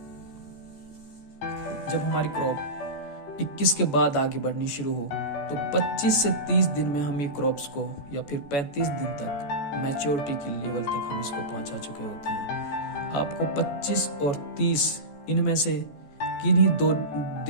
जब हमारी क्रॉप 21 के बाद आगे बढ़नी शुरू हो तो 25 से 30 दिन में हम ये क्रॉप्स को या फिर 35 दिन तक मैच्योरिटी की लेवल तक हम इसको पहुंचा चुके होते हैं। आपको 25 और 30 इनमें से किन्हीं 2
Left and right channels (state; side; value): late; right; 14 ms